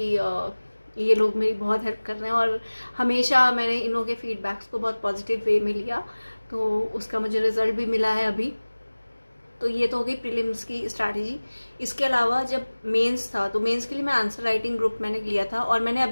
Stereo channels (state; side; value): inverted; both; correlation -1.00